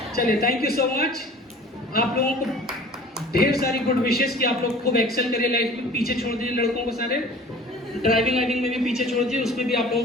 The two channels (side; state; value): both; normal; correlation 0.45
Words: चलिए, थैंक यू सो मच। आप लोगों को ढेर सारी गुड विशेस कि आप लोग खूब एक्सेल करिए लाइफ में। पीछे छोड़ दीजिए लड़कों को सारे, ड्राइविंग में भी पीछे छोड़ दीजिए, उसमें भी आप